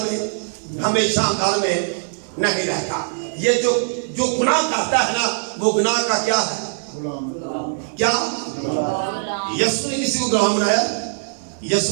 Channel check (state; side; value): silent; left; digital silence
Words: में हमेशा घर में नहीं रहता ये जो गुनाह करता है ना वो गुनाह का क्या है क्या यीशु ने किसी को गुलाम बनाया